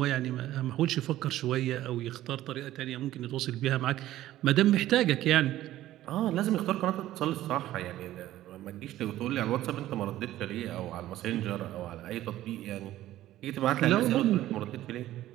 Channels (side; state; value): left; quieter; 14.3 dB